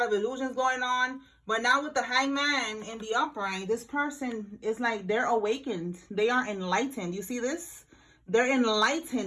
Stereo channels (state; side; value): identical; both; correlation 1.00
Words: of illusions going on. But now with the hangman in the upright, this person is like, they're awakened. They are enlightened. You see this? They're